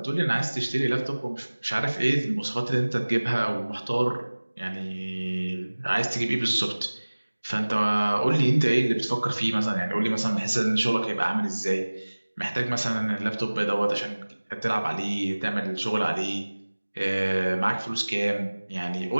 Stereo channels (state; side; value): inverted; both; correlation -1.00